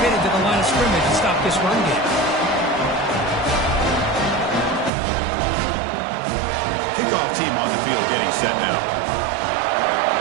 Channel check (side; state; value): left; drops out; at 4.9 s